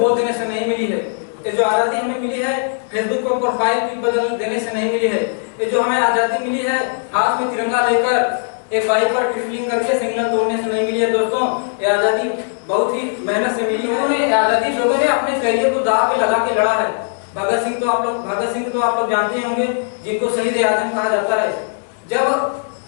देने से नहीं मिली है ये जो आज़ादी हमें मिली है, फेसबुक पर प्रोफाइल पिक बदल देने से नहीं मिली है। ये जो हमें आज़ादी मिली है, हाथ में तिरंगा लेकर एक बाइक पर ट्रिपलिंग करके सिग्नल तोड़ने से नहीं मिली है। दोस्तों, ये आज़ादी बहुत ही मेहनत से मिली है। आज़ादी लोगों ने अपने करियर को दांव पे लगा के लड़ा है। भगत सिंह तो आप लोग जानते होंगे, जिनको शहीद ए आज़म कहा जाता है। जब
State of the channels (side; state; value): right; silent; digital silence